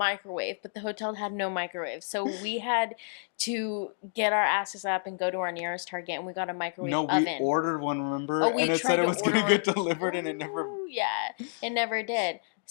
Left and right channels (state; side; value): silent; right; digital silence